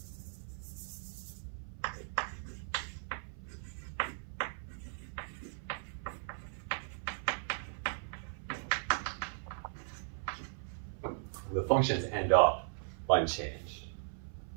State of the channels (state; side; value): silent; left; 53 dB below the other